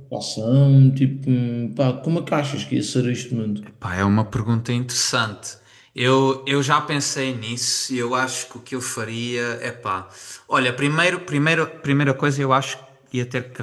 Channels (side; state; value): both; identical; correlation 1.00